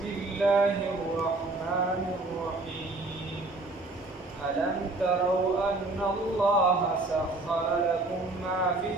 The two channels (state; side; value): quieter; left; 3.1 dB